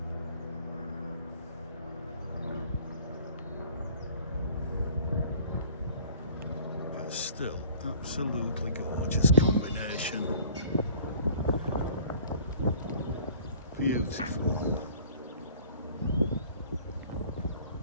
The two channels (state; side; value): inverted; both; correlation -0.51